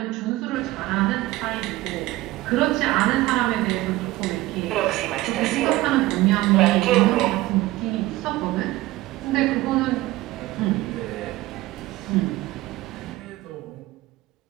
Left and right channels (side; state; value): left; quieter; 17.9 dB